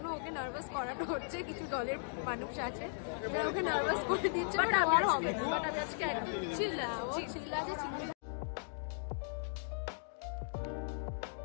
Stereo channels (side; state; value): right; silent; digital silence